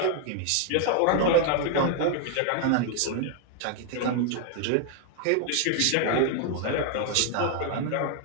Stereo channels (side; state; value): both; different; correlation 0.00